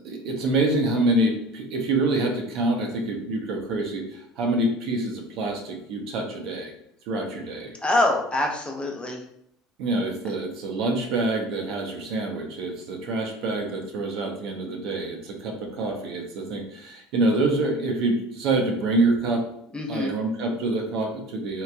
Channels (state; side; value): normal; both; correlation 0.42